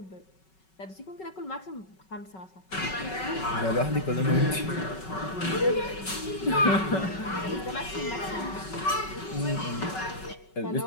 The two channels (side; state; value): right; late; 5.3 ms